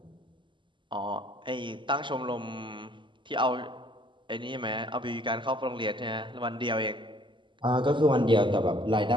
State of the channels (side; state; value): left; late; 0.24 ms